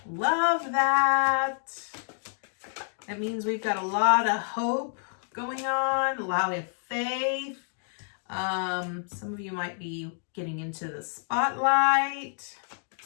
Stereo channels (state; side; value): silent; right; 59 dB below the other